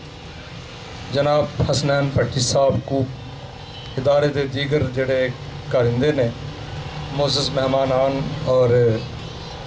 जनाब हसनैन भट्टी साहब को इदारे के दीगर जड़े कारिंदे ने मोअज़्ज़ज़ मेहमानान और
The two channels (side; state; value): both; identical; correlation 1.00